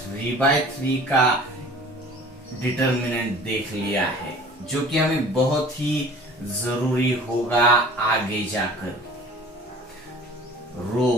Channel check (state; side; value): normal; both; correlation 0.46